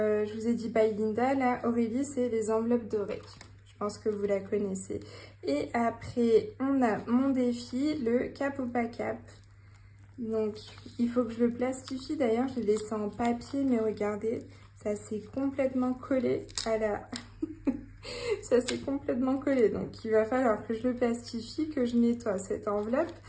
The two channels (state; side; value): identical; both; correlation 1.00